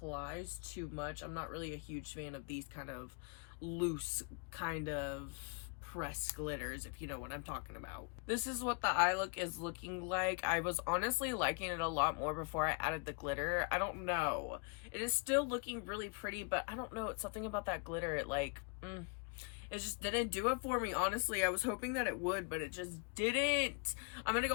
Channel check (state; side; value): quieter; right; 35.4 dB